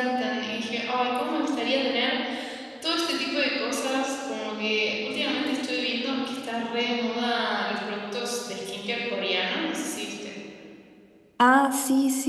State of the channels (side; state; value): both; identical; correlation 1.00